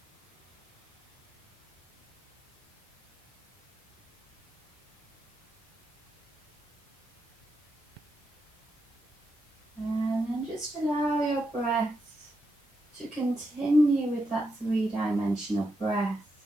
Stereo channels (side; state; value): both; normal; correlation 0.84